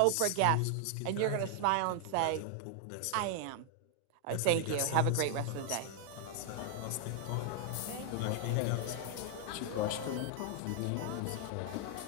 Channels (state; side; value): different; both; correlation 0.00